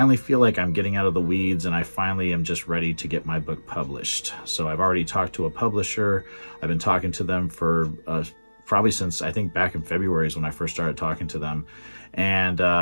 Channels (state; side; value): inverted; both; correlation -1.00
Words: feel like I'm getting out of the weeds, and I finally am just ready to get my book published. So I've already talked to a publisher. I've been talking to them for probably since, I think, back in February is when I first started talking to them,